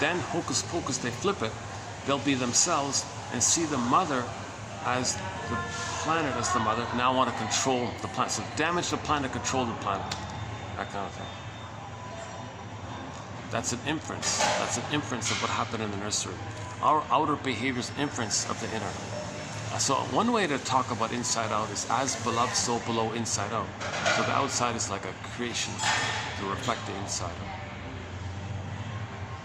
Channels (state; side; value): identical; both; correlation 1.00